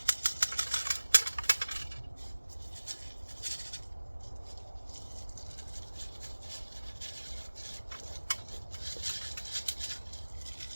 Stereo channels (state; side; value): inverted; both; correlation -1.00